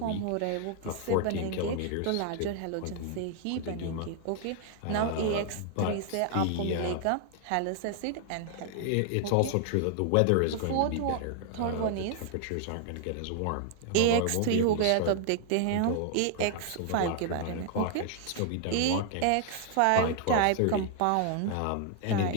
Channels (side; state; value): both; different; correlation 0.00